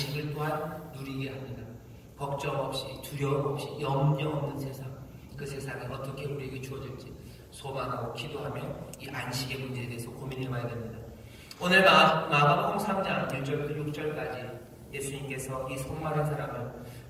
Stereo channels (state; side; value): identical; both; correlation 1.00